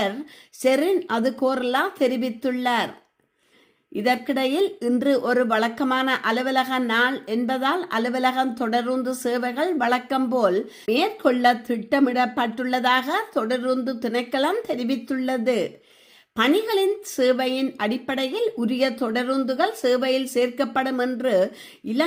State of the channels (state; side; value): identical; both; correlation 1.00